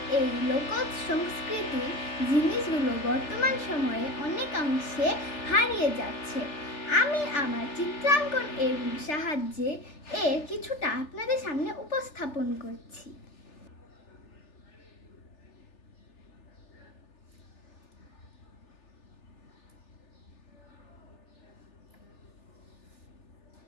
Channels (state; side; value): late; right; 3.4 ms